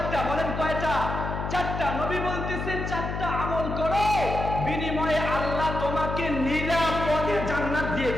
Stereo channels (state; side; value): noise; left; hum, 4 dB below the sound